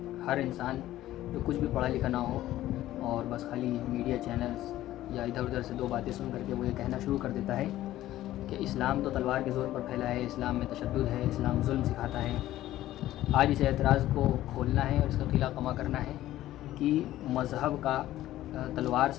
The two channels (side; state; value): right; quieter; 14.4 dB